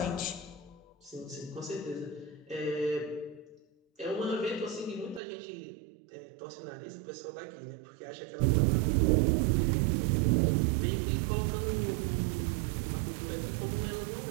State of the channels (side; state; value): left; drops out; at 5.2 s